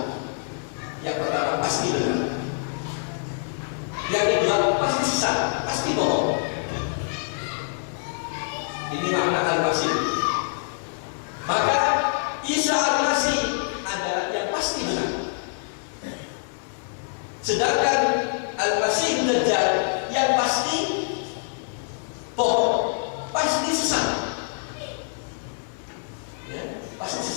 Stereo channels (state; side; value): silent; right; digital silence